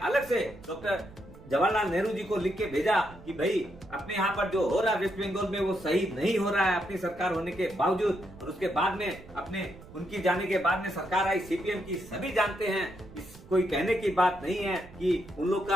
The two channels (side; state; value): right; noise; rumble, 19 dB below the sound